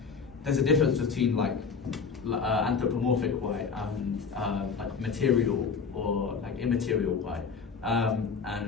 there's a difference between like anthropomorphic white and like material or like immaterial white,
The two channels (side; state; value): right; quieter; 5.5 dB